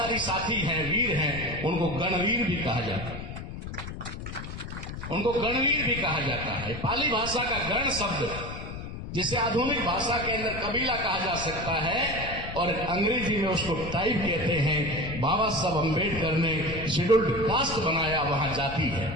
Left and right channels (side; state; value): left; noise; rumble, 8 dB below the sound